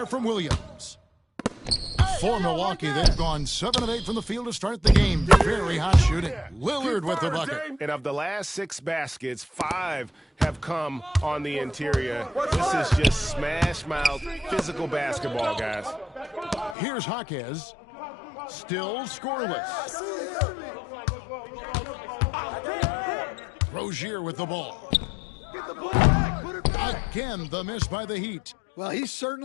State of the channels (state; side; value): drops out; right; at 16.8 s